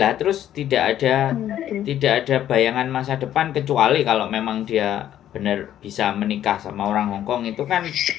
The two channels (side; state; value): right; quieter; 11.4 dB